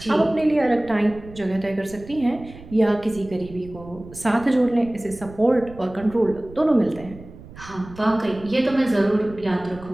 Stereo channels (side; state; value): right; noise; rumble, 18 dB below the sound